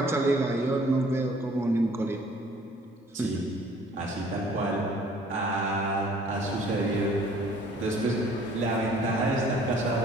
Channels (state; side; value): normal; both; correlation 0.56